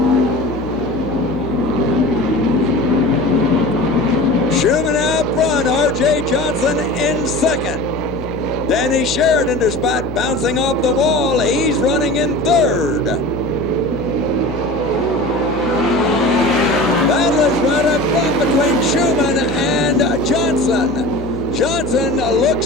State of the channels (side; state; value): left; noise; hum, 11 dB below the sound